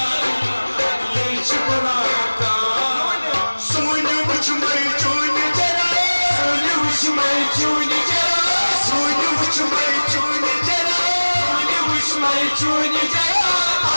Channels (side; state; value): both; inverted; correlation -1.00